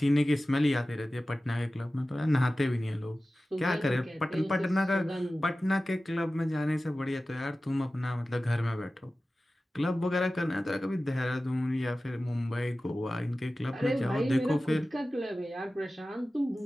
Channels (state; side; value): normal; both; correlation 0.96